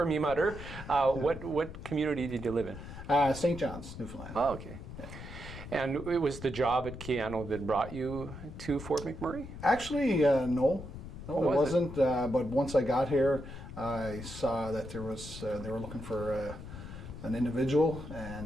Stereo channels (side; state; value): left; noise; rumble, 11 dB below the sound